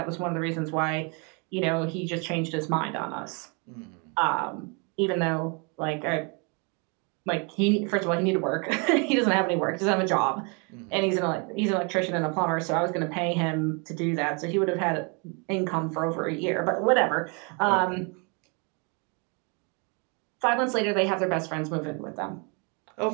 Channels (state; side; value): quieter; left; 33.7 dB